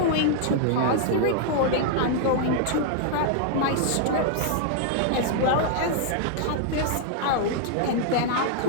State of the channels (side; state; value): both; different; correlation -0.01